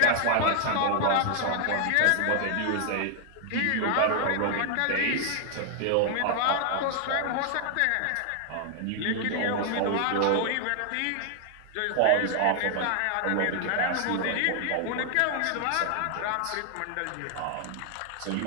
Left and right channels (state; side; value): different; both; correlation 0.00